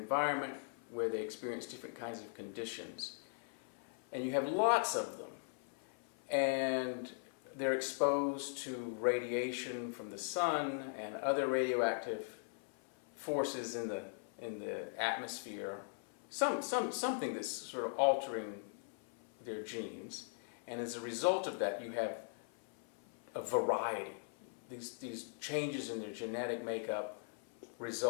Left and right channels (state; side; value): silent; right; 51 dB below the other